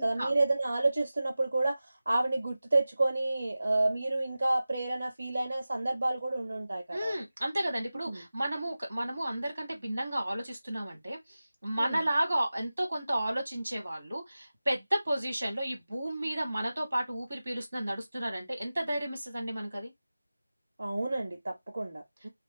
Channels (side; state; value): both; inverted; correlation -0.96